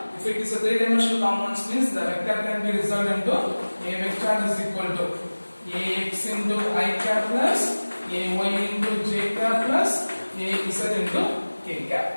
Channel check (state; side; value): inverted; both; correlation -1.00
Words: If it is a three-dimensional components means the vector can be resolved into a vector is equal to ax into I cap plus ay into j cap plus az into k